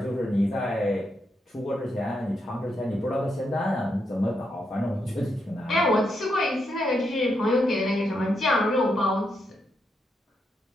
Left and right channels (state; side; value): normal; both; correlation 0.81